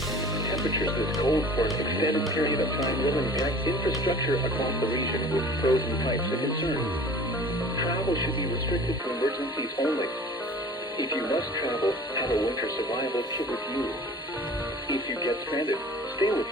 Temperatures this cold for an extended period of time will impact infrastructure across the region with frozen pipes a concern. Travel should be restricted to emergencies only. If you must travel, have a winter survival kit with you. If you get stranded, stay with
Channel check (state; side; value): normal; both; correlation 0.44